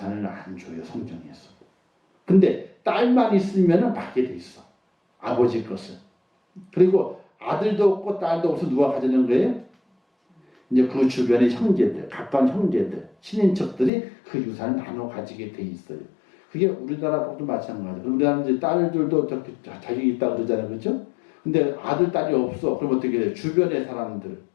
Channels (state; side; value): drops out; right; at 13.9 s